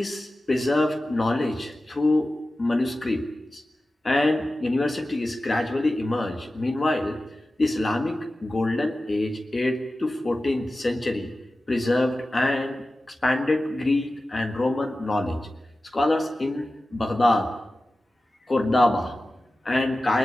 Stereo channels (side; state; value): both; normal; correlation 0.95